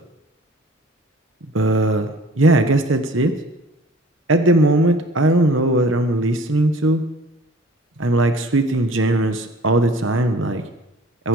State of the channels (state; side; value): normal; both; correlation 0.49